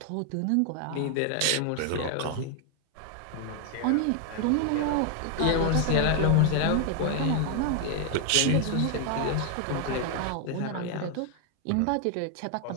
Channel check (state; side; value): different; both; correlation 0.00